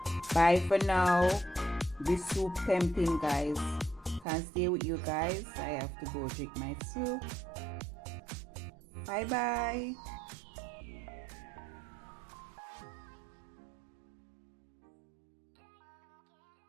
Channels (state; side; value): drops out; left; at 4.2 s